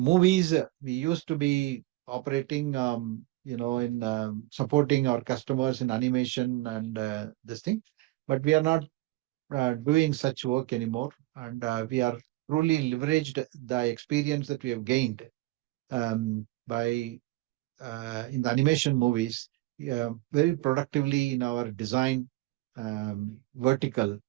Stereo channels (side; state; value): left; quieter; 19.5 dB